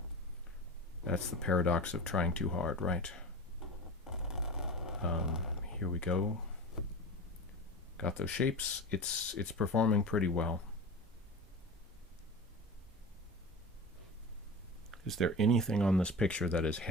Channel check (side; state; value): both; normal; correlation 0.31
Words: the paradox of trying too hard, right? Here we go. Got those shapes. It's performing pretty well. Is there anything on this picture that is